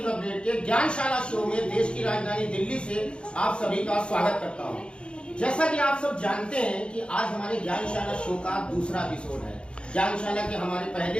अपडेट के ज्ञानशाला शो में देश की राजधानी दिल्ली से आप सभी का स्वागत करता हूं। जैसा कि आप सब जानते हैं कि आज हमारे ज्ञानशाला शो का दूसरा एपिसोड है। ज्ञानशाला के हमारे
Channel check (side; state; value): right; late; 0.056 ms